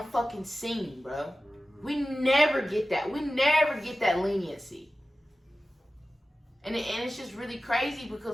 fucking scene, bro. We never get that. We never get that leniency. And it's just really crazy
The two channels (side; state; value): both; normal; correlation 0.95